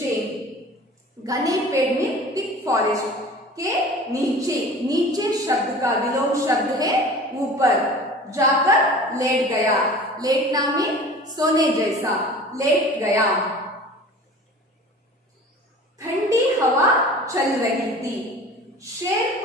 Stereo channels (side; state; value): both; normal; correlation 0.41